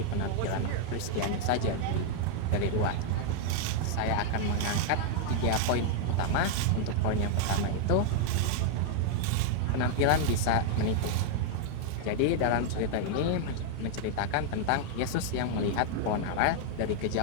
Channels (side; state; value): both; different; correlation 0.00